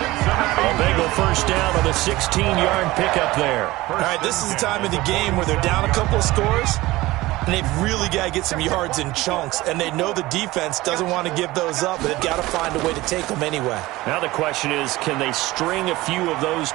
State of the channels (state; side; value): quieter; left; 18.8 dB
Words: Bengal 1st down on the 16-yard pickup there. All right, this is the time of the game where they're down a couple of scores, and they've really got to get some yards in chunks, and they know the defense doesn't want to give those up, but they've got to find a way to take them anyway. Now the question is, can they string a few of those